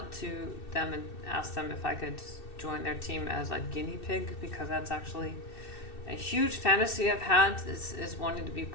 to them and asked them if I could join their team as a guinea pig, because that's actually a huge fantasy I've had is wanting to be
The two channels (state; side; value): late; right; 2.6 ms